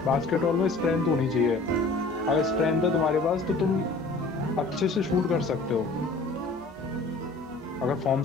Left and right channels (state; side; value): quieter; right; 3.3 dB